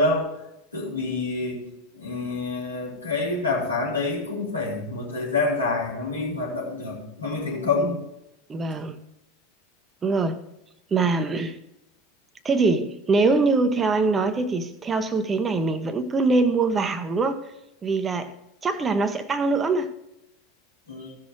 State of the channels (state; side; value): normal; both; correlation 0.41